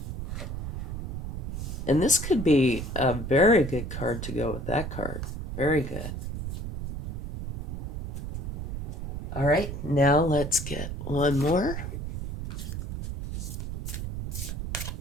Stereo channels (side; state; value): right; noise; rumble, 4 dB below the sound